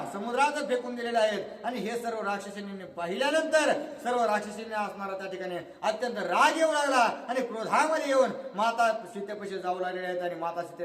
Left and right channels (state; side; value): identical; both; correlation 1.00